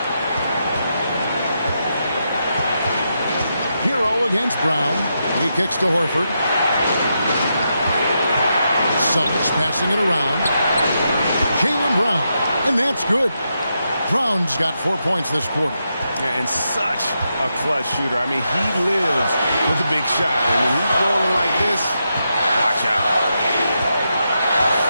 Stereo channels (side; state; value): both; inverted; correlation -0.84